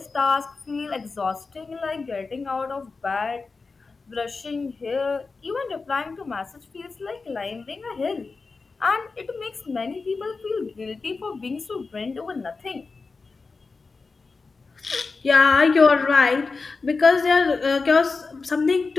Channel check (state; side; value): quieter; right; 4.2 dB